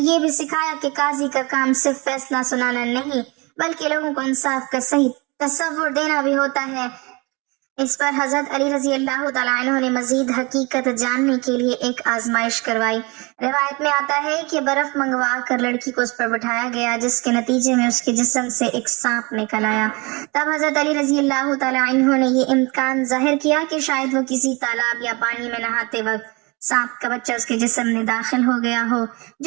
بھی سکھایا کہ قاضی کا کام صرف فیصلہ سنانا نہیں بلکہ لوگوں کو انصاف کا صحیح تصور دینا بھی ہوتا ہے۔ اس پر حضرت علی رضی اللہ تعالیٰ عنہ نے مزید حقیقت جاننے کے لیے ایک آزمائش کروائی۔ روایت میں آتا ہے کہ برف منگوا کر لڑکی کو اس پر بٹھایا گیا جس کے نتیجے میں اس کے جسم سے ایک سانپ نکل آیا۔ تب حضرت علی رضی اللہ تعالیٰ عنہ نے یہ امکان ظاہر کیا کہ شاید وہ کسی تالاب یا پانی میں نہاتے وقت سانپ کا بچہ اس کے جسم میں داخل ہو گیا ہو،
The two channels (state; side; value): quieter; left; 27.1 dB